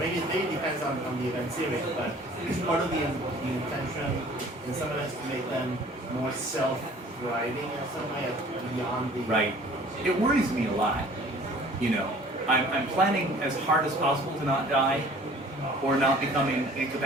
it depends on the event series, but it's part of the intention in some events to make them more self-driving in some way beyond the. Right. It worries me a lot. You know, I'm planning as hard as possible to not die or not becoming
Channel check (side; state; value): both; normal; correlation 0.50